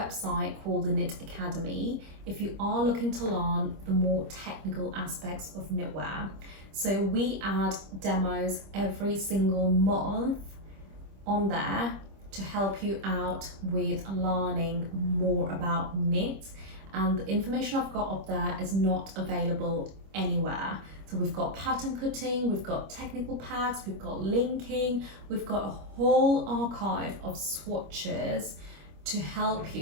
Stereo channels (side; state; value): left; late; 25 ms